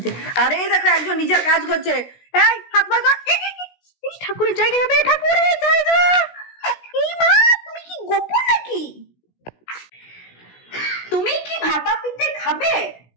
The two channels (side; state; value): right; late; 16 ms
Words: আরে দেখো একজন নিজের কাজ করছে। এই হাত ভাজা, ঠাকুরের জায়গা যাবে, ঠাকুরের জায়গা। এই মা, তুমি কি গোপন নাকি? তুমি কি ভাপা পিঠে খাবে?